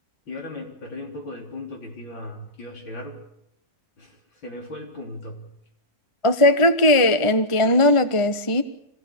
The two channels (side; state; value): right; late; 1.4 ms